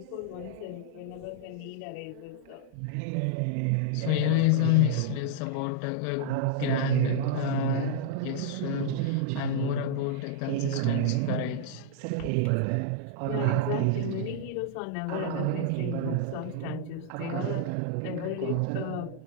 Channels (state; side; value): different; both; correlation -0.01